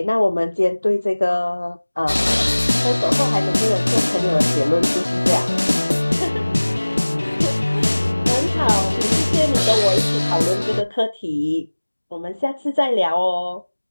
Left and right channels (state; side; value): inverted; both; correlation -1.00